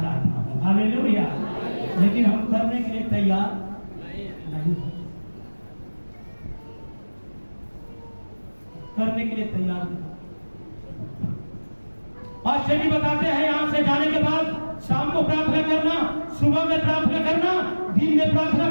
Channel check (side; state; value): both; inverted; correlation -1.00